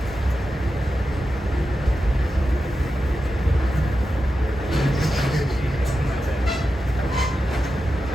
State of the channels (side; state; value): both; normal; correlation 0.91